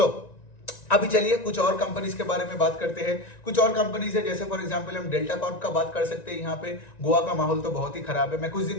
अभी चलिए कुछ और कंपनीज के बारे में बात करते हैं। कुछ और कंपनीज है, जैसे फॉर एग्जांपल हम डेल्टा कॉर्प का बात कर सकते हैं। यहाँ पे गोवा का माहौल तो बहुत ही खराब है। मैं कुछ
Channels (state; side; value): late; right; 1.9 ms